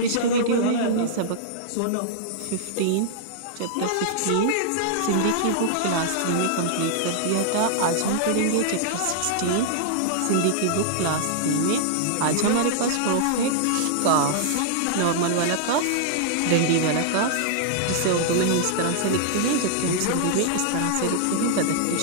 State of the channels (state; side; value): different; both; correlation -0.01